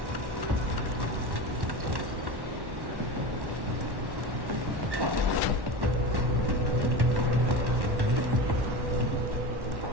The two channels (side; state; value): left; late; 1.1 ms